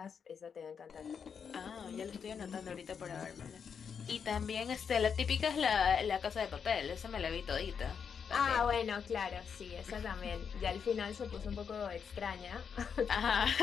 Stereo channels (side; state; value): right; quieter; 6.7 dB